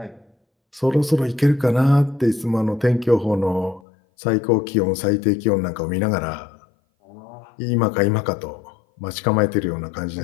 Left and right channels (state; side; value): drops out; right; at 3.8 s